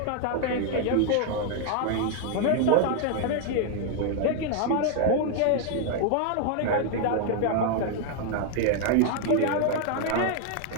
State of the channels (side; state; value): both; different; correlation 0.00